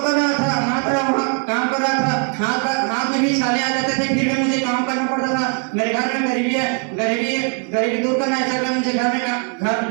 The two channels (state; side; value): quieter; left; 39.0 dB